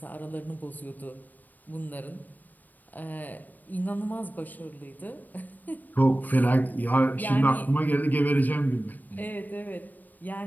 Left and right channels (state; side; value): late; right; 0.086 ms